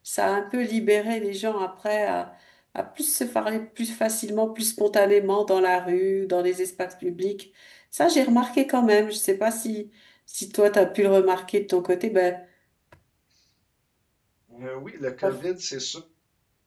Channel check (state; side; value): identical; both; correlation 1.00